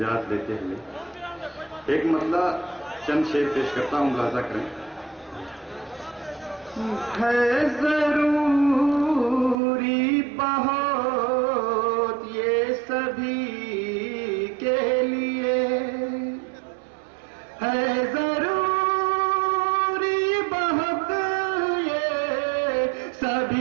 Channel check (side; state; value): left; drops out; at 9.6 s